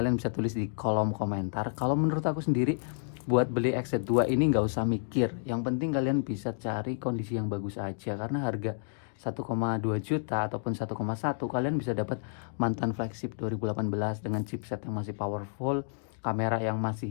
bisa tulis di kolom komentar. Kalau menurut aku sendiri, buat beli XZ2 ini nggak usah mikir. Yang penting kalian bisa cari kondisi yang bagus aja. Karena harga 1,2 juta ataupun 1,1 kalian bisa dapat mantan flagship 2018 dengan chipset yang masih powerful, kamera yang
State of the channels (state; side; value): silent; right; digital silence